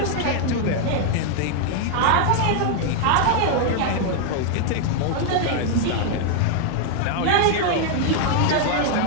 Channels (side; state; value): both; different; correlation 0.00